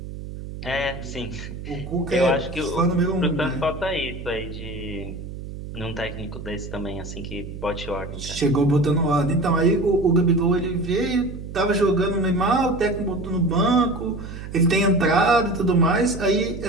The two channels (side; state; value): right; noise; hum, 10 dB below the sound